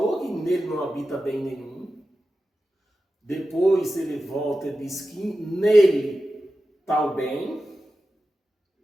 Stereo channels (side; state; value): both; normal; correlation 0.93